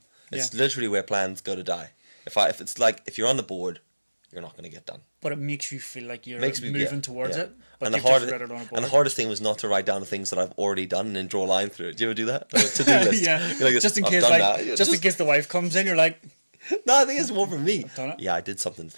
It's literally where plans go to die. If you're on the board, you're not going to get done. But it makes you feel like you're moving towards it. But And you've just read it on a board. and the hardest thing was not to write down the things that I've already done and then draw a line through it. Do you ever do that? To do list. Yeah. You're like, just in "I've case, done like, that." just in case the wife comes in, you're like, No, I think it's more for me. I've done it. Yeah, I did something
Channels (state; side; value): inverted; both; correlation -1.00